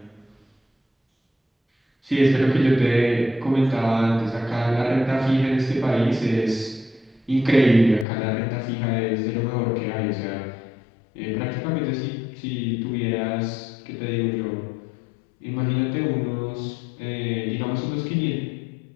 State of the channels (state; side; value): drops out; right; at 8.1 s